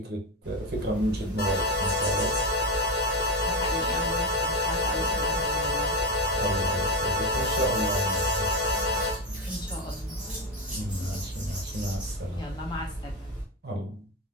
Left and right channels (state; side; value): normal; both; correlation 0.15